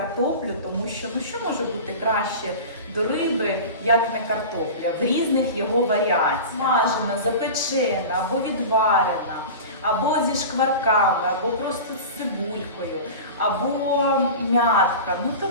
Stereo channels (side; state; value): both; inverted; correlation -0.32